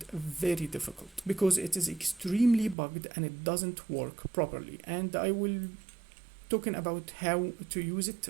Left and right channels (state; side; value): drops out; left; at 2.8 s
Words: very difficult because it is extremely bugged and it doesn't work properly. And I will talking about how to use it